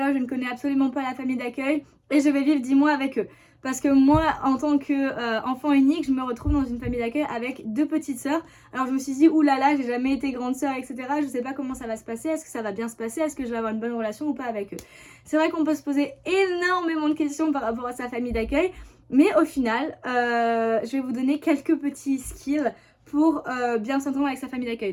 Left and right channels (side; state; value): both; identical; correlation 1.00